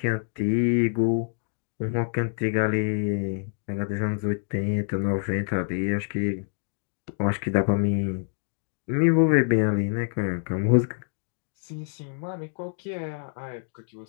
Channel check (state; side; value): silent; right; digital silence